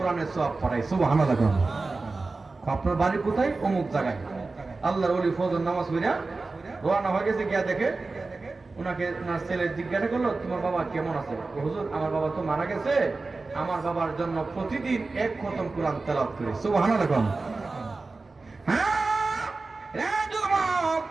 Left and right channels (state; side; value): quieter; left; 3.7 dB